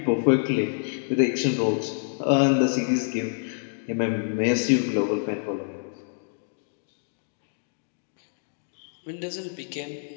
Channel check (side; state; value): right; silent; digital silence